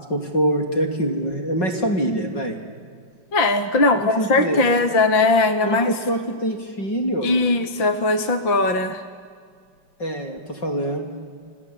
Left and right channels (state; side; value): late; right; 5.8 ms